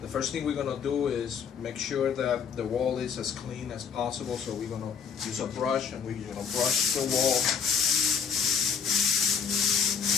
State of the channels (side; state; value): right; quieter; 6.5 dB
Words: The first thing we're going to do is make sure that the wall is as clean as possible, so we're going to use a brush and we're going to brush the wall